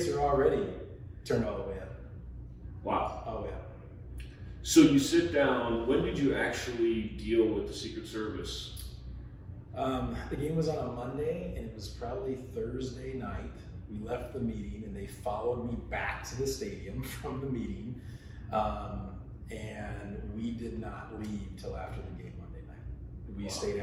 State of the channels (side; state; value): both; identical; correlation 1.00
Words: are already turned all the way up. Wow. All the way up. So you sit down. When did you actually deal with the Secret Service? The game was on a Monday, and it was probably Thursday night. We left the meeting, and they followed me back to the stadium from the meeting, and we did not leave till after the game Monday night. We stayed